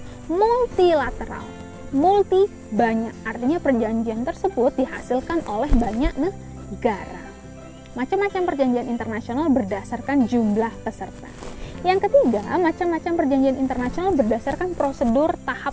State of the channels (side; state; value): both; identical; correlation 1.00